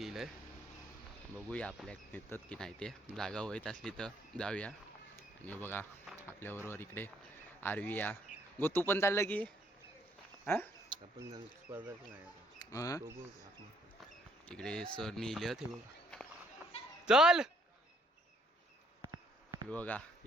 आहे. बघूया आपल्या नेतात की नाही, ते जागा होत असली तर जाऊया. आणि बघा आपल्याबरोबर इकडे आरवी या गो, तू पण चाललं की हां आपण स्पर्धा नाही इकडे सर लिहिलं ते बघा. चल बघा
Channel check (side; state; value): both; normal; correlation 0.67